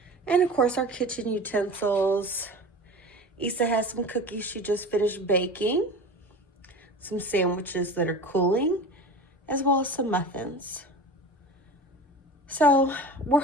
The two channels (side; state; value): both; normal; correlation 0.34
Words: and of course our kitchen utensils. Issa has some cookies she just finished baking, some sandwiches that are cooling, as well as some muffins. So we're